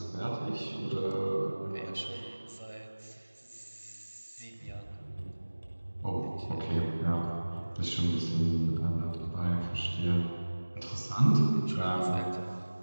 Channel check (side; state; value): both; inverted; correlation -1.00